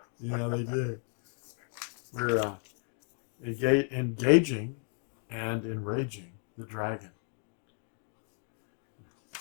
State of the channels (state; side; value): quieter; right; 37.0 dB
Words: Yeah, they do. We're engaging and enraging the dragon.